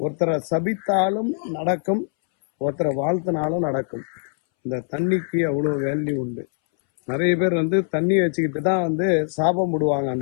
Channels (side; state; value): right; silent; 64 dB below the other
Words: ஒருத்தரை சபித்தாலும் நடக்கும், ஒருத்தரை வாழ்த்தினாலும் நடக்கும். இந்த தண்ணிக்கு அவ்வளோ வேல்யூ உண்டு. நிறைய பேர் வந்து தண்ணி வச்சுக்கிட்டு தான் வந்து சாபம் விடுவாங்க.